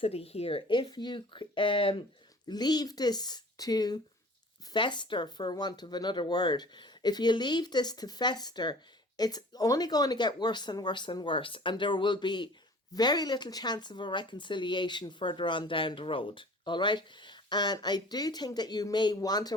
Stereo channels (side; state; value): both; normal; correlation 0.46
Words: here, if you leave this to fester, for want of another word, if you leave this to fester, it's only going to get worse and worse and worse, and there will be very little chance of a reconciliation further on down the road. All right. And I do think that you may want a